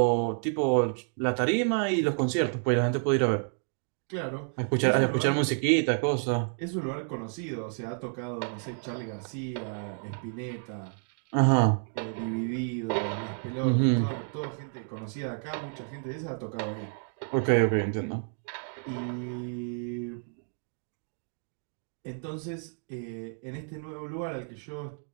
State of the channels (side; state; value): left; silent; 58 dB below the other